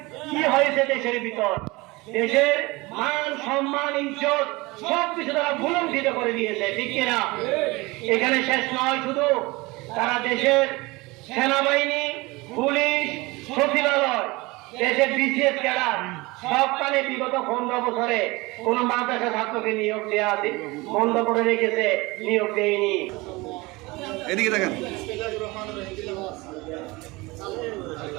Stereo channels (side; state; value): left; quieter; 23.0 dB